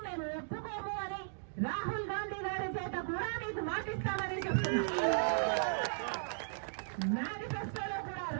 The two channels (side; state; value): left; silent; digital silence